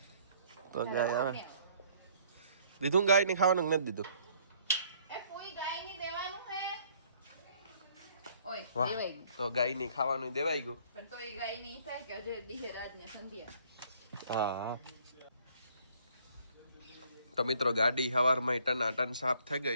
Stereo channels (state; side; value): inverted; both; correlation -0.61